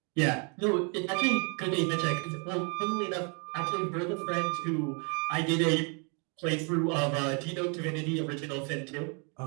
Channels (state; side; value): quieter; left; 36.2 dB